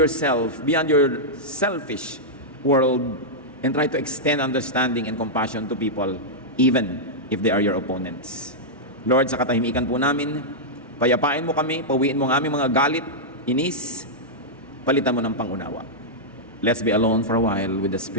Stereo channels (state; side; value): normal; both; correlation -0.08